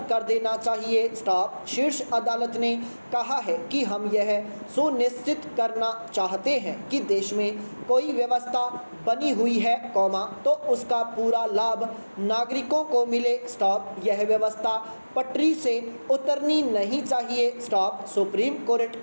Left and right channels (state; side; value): inverted; both; correlation -1.00